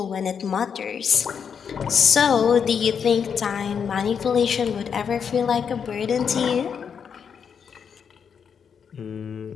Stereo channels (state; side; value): quieter; right; 7.0 dB